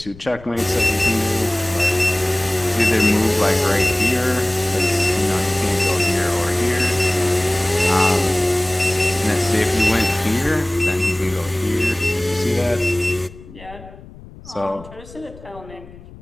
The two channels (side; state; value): left; noise; rumble, 19 dB below the sound